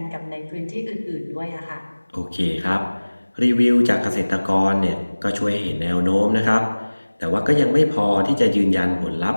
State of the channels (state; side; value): inverted; both; correlation -1.00